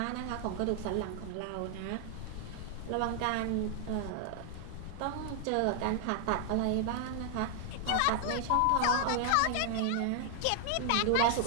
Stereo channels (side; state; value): both; different; correlation 0.00